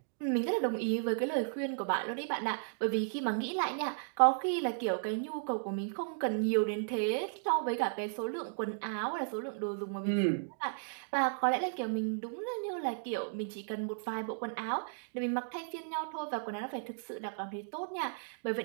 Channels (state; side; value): silent; left; digital silence